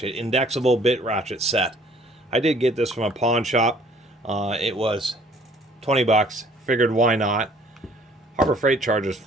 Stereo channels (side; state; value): both; normal; correlation 0.57